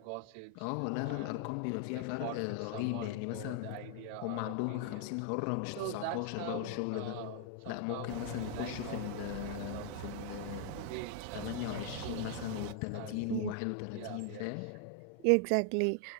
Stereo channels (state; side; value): different; both; correlation 0.00